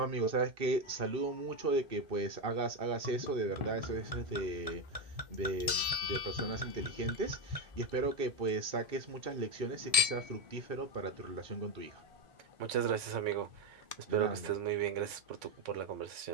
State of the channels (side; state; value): left; late; 2.6 ms